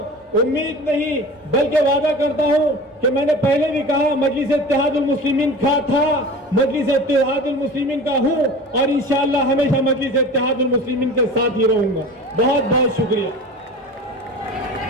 उम्मीद नहीं बल्कि वादा करता हूं कि मैंने पहले भी कहा मजलिस इत्तेहादुल मुस्लिमीन का था, मजलिस इत्तेहादुल मुस्लिमीन का हूं और इंशाअल्लाह हमेशा मजलिस इत्तेहादुल मुस्लिमीन के साथ ही रहूंगा। बहुत बहुत शुक्रिया।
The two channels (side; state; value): both; normal; correlation 0.36